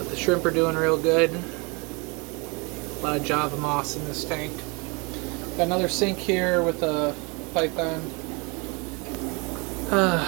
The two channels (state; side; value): quieter; left; 29.6 dB